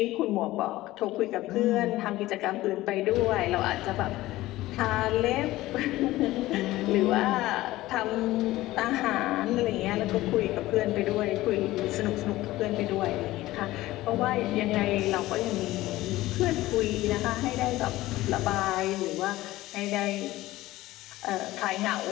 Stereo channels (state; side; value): quieter; right; 17.0 dB